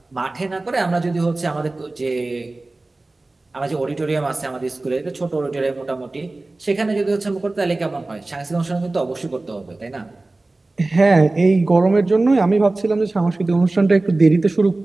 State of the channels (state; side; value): quieter; left; 3.1 dB